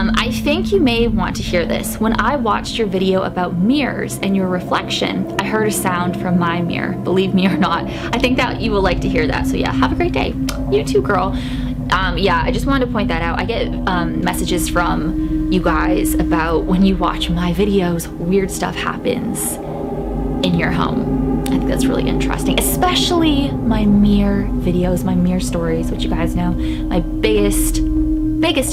I think you may want to hear this. When I watched your video about mirrors and your reflection, I heard a sound from my mirror. Believe me or not, I think that you will like to hear that. So yeah, have a great day. You too, girl. Yeah, I just wanted to point that out. I get messages from you guys about when you watch my videos, weird stuff happens in your home. I think that's really interesting, especially my mirror videos, my mirror stories, which you guys know, my biggest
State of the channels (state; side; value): identical; both; correlation 1.00